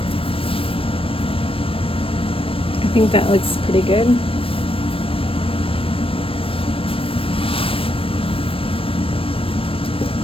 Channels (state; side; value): late; right; 0.27 ms